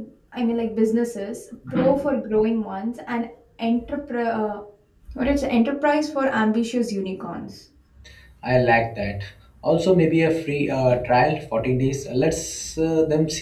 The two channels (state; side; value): identical; both; correlation 1.00